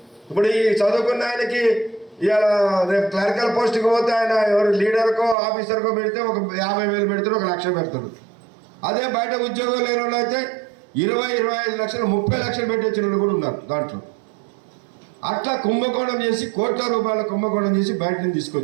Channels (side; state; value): left; drops out; at 5.4 s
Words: ఇప్పుడు ఈ చదువుకున్న ఆయనకి ఇవాళ రేపు క్లరికల్ పోస్ట్కి పోతే ఆయన ఎవరు లీడర్కో ఆఫీసర్కో పెడితే ఒక 50,000 పెడతారు, 1,00,000 పెడతారు. అదే బయట ఉద్యోగం లేని వాళ్ళు అయితే 20-25 లక్షలు 30 లక్షలు పెట్టించిన వాళ్ళు కూడా ఉన్నారు దాంట్లో. అట్లా కుంభకోణం చేసి కోట్ల రూపాయల కుంభకోణం చేసి బయట నుంచి